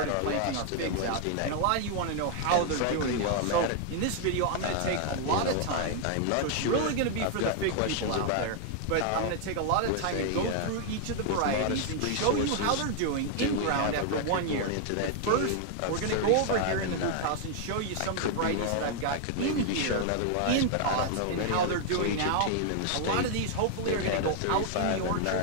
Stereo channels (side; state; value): both; different; correlation 0.00